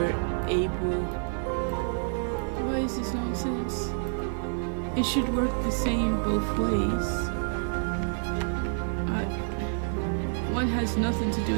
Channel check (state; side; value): silent; left; 59 dB below the other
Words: able. Why is this nonsense? It should work the same both ways. One has nothing to do